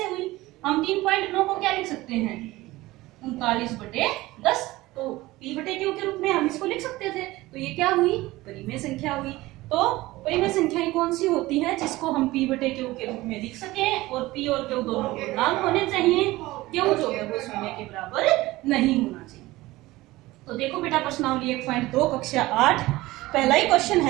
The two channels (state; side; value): quieter; left; 18.8 dB